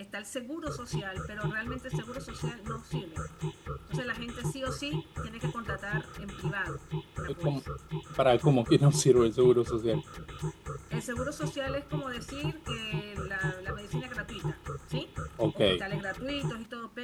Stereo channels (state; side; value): identical; both; correlation 1.00